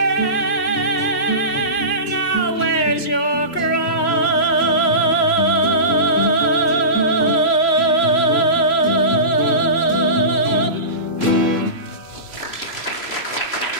now wears your crown.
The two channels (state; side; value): late; right; 3.0 ms